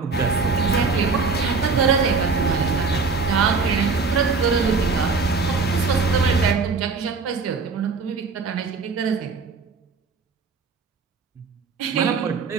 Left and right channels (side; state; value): left; quieter; 4.5 dB